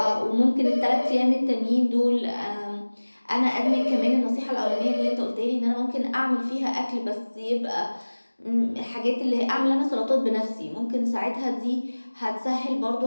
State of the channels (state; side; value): inverted; both; correlation -1.00